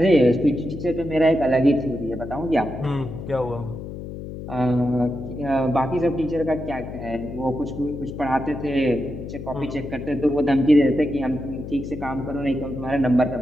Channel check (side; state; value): left; noise; hum, 9 dB below the sound